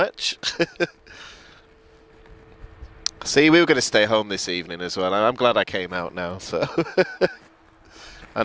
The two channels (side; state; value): both; identical; correlation 1.00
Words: See, we were going to stay home this evening as well. I'm glad I came out now. So,